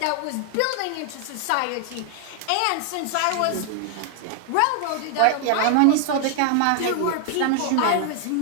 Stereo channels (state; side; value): different; both; correlation 0.00